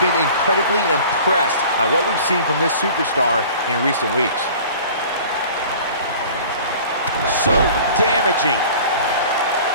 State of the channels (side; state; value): both; inverted; correlation -0.45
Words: been incredibly impressed by what we've seen from this superstar in recent weeks. So damaging.